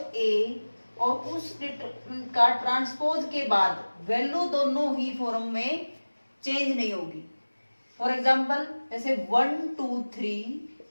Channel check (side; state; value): both; inverted; correlation -1.00